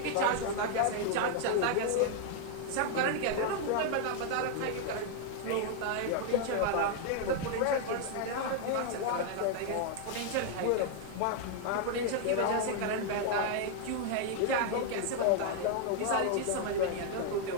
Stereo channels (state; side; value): different; both; correlation 0.00